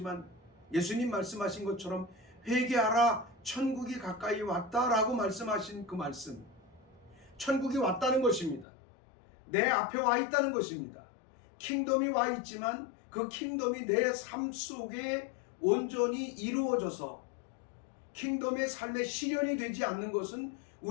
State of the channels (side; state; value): right; drops out; at 8.7 s